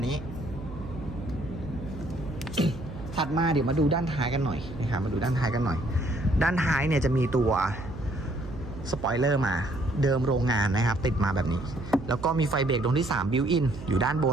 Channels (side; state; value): right; noise; hum, 12 dB below the sound